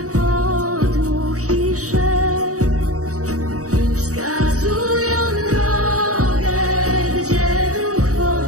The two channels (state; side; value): late; left; 0.66 ms